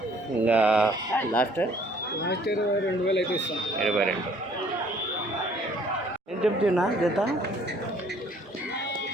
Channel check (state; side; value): normal; both; correlation 0.59